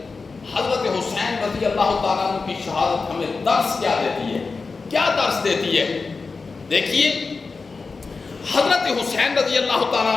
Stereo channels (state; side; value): quieter; right; 4.3 dB